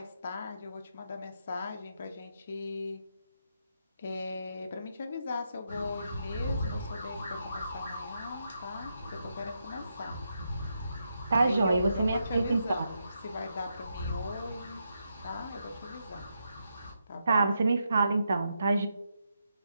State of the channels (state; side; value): inverted; both; correlation -0.82